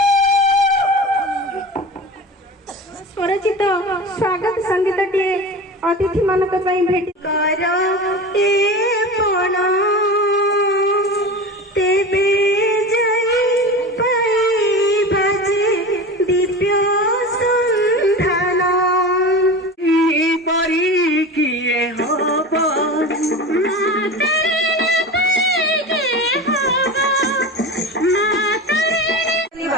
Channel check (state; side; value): normal; both; correlation 0.30